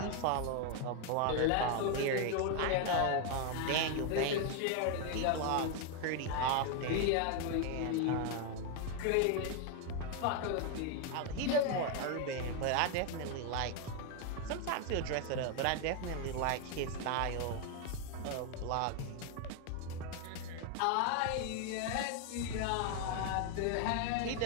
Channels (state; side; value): different; both; correlation 0.01